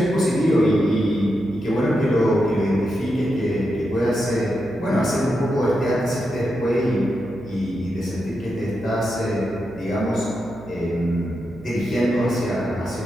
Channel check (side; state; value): right; noise; hum, 18 dB below the sound